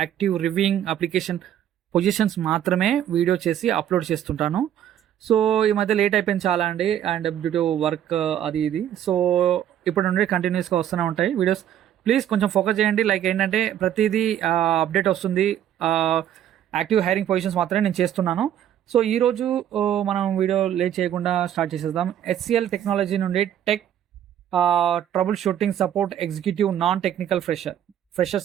active reviewing application positions మాత్రమే వీడియో చేసి అప్లోడ్ చేస్తుంటాను. సో ఈ మధ్య లేట్ అయిపోయింది చాలా అండి, అండ్ డ్యూ టు వర్క్ అది ఇది. సో ఇప్పుడు నుండి కంటిన్యూస్గా వస్తూనే ఉంటాయి వీడియోస్. ప్లీజ్ కొంచెం ఫోకస్ చేయండి. లైక్ ఏంటంటే ప్రతిదీ అప్డేట్ వస్తుంది. యాక్టివ్ హైరింగ్ పొజిషన్స్ మాత్రమే నేను చేస్తున్నాను. సో ఈరోజు మనం వీడియో లేట్ చేయకుండా స్టార్ట్ చేసేద్దాం. HCL టెక్నాలజీ నుండి tech trouble shooting support executive non technical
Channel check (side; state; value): left; quieter; 10.7 dB